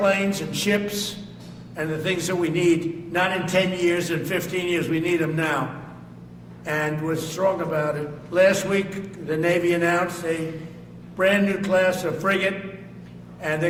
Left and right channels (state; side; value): identical; both; correlation 1.00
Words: and ships and the things that we need, not in 10 years and 15 years. We need them now. And we're strong about it. Last week, the Navy announced a brand new class of frigate, and they're